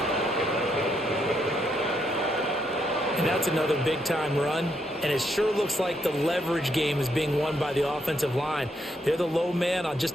And that's another big-time run. And it sure looks like the leverage game is being won by the offensive line. They're the low man on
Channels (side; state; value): both; normal; correlation 0.76